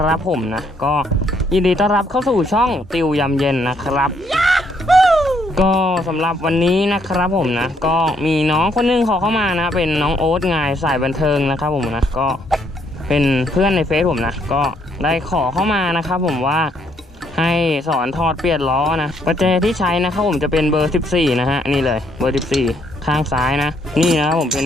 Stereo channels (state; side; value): normal; both; correlation 0.71